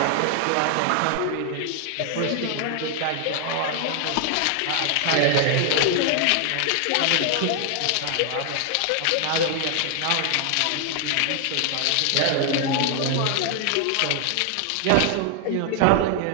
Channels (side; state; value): both; different; correlation 0.00